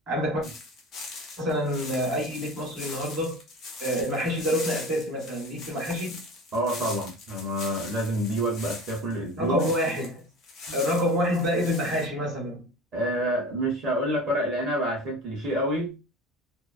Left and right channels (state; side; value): normal; both; correlation 0.35